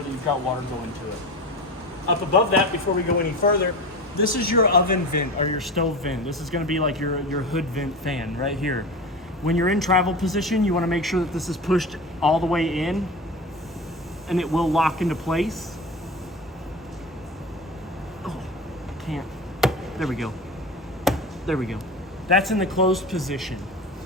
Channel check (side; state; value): both; normal; correlation 0.29